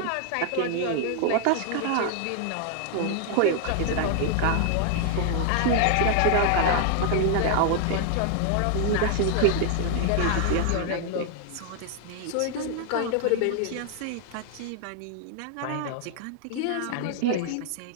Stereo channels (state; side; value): different; both; correlation 0.00